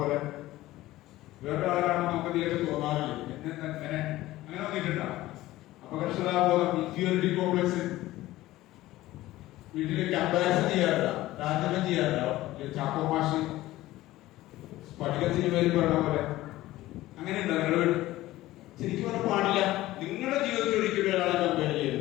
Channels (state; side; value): quieter; right; 16.6 dB